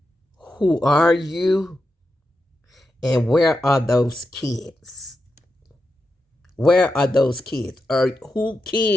Who are you? And where are those kids? Where are those kids? Or who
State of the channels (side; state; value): both; normal; correlation 0.88